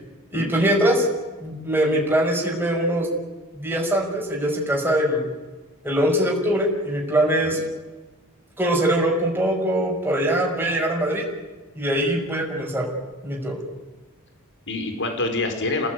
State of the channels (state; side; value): normal; both; correlation 0.43